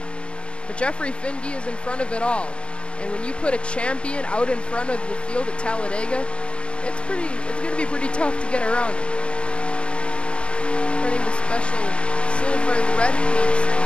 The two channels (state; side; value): late; right; 0.056 ms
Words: But Jeffrey Finge is in front of it all. And when you put a champion out in front of the field at Talladega, it's going to be pretty tough to get around him. Running the special silver and red paint